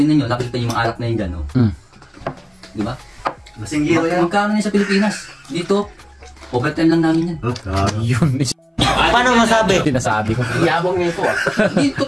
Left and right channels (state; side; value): identical; both; correlation 1.00